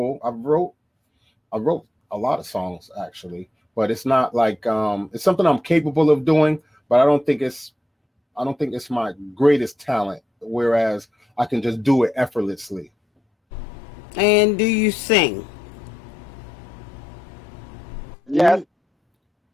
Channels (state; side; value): normal; both; correlation 0.85